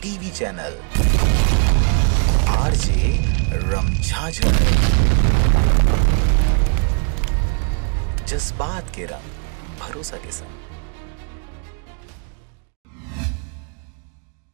टीवी चैनल आरजे रमझाझर। जज्बात के रंग, भरोसा के संग।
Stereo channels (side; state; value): left; quieter; 39.5 dB